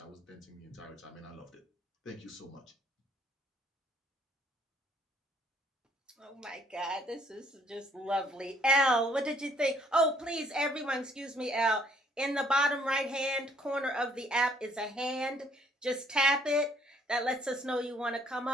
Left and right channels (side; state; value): both; normal; correlation 0.64